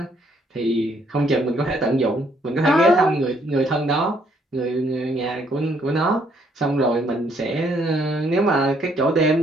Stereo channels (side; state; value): both; normal; correlation 0.68